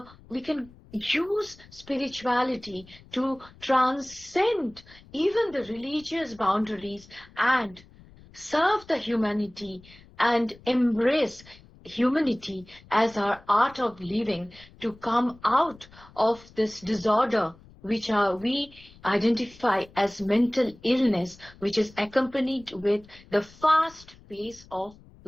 we can use spirituality to transcend even the religious boundaries and serve the humanity and embrace humanity as our art of living to come out of this disorder which we identify as mental illness, which is accompanied with the fast pace of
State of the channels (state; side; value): noise; left; rumble, 24 dB below the sound